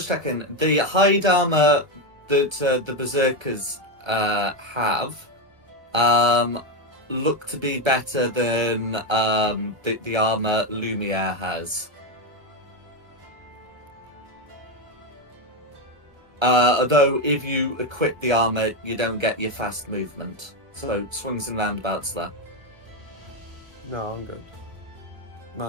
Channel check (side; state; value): left; late; 1.2 ms